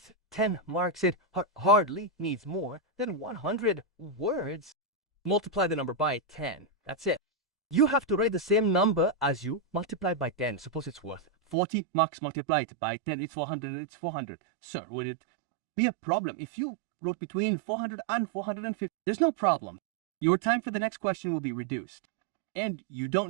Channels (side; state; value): left; drops out; at 11.6 s